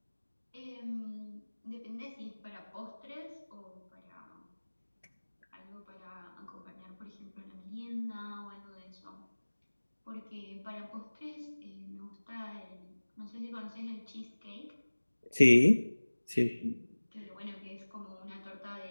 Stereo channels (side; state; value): both; inverted; correlation -1.00